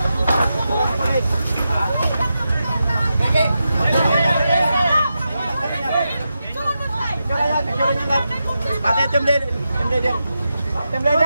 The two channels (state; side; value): inverted; both; correlation -0.88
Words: Pati team leader,